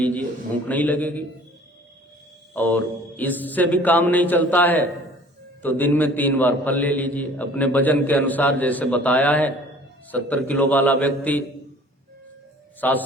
भूख नहीं लगेगी। और इससे भी काम नहीं चलता है तो दिन में 3 बार फल ले लीजिए अपने वजन के अनुसार। जैसे बताया है 70 किलो वाला व्यक्ति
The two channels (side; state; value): both; normal; correlation 0.50